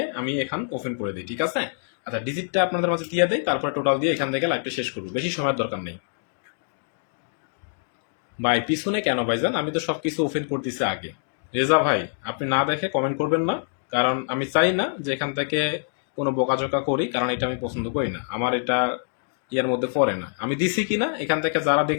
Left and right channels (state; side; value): silent; right; digital silence